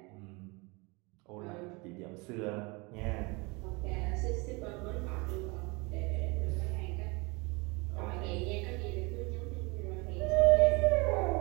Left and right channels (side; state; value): left; quieter; 27.4 dB